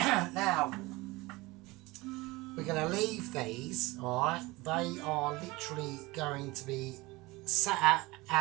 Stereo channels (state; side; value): quieter; left; 21.9 dB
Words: we're going to leave these. Alright, they are literally going to be sat